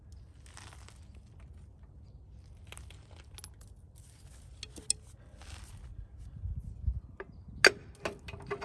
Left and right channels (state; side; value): identical; both; correlation 1.00